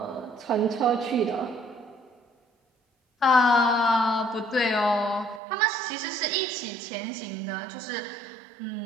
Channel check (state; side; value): drops out; left; at 5.4 s